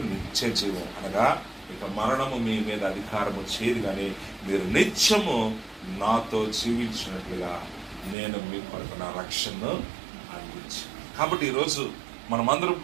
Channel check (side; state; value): left; drops out; at 8.2 s